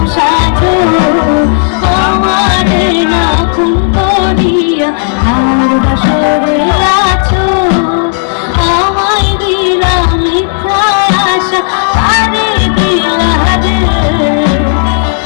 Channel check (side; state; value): right; silent; digital silence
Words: সাজো আমারে না খুন করিয়া, তার বাসরে আছো আমায় দিলা মিথ্যা আশা, তারে দিলা রে